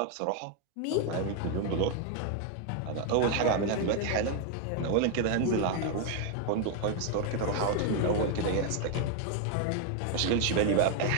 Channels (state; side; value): different; both; correlation 0.01